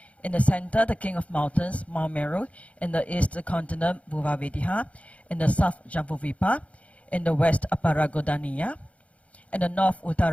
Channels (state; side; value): late; right; 0.065 ms